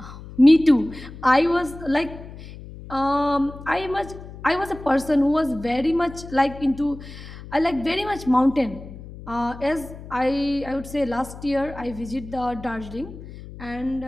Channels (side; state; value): left; noise; hum, 14 dB below the sound